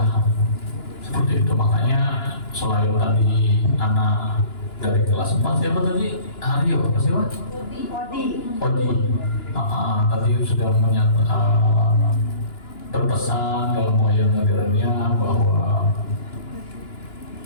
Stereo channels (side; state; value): right; late; 2.9 ms